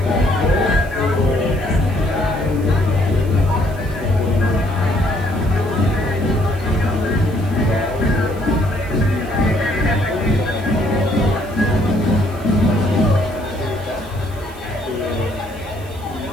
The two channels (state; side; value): noise; right; hiss, 23 dB below the sound